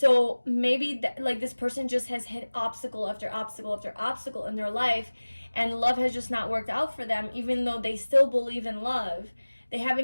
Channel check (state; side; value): inverted; both; correlation -1.00